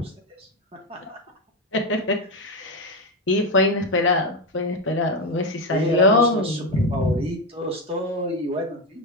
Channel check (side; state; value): both; normal; correlation 0.11